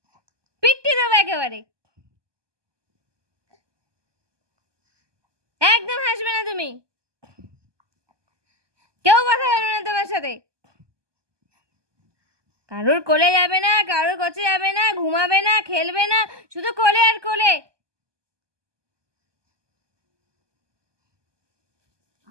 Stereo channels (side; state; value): left; late; 1.2 ms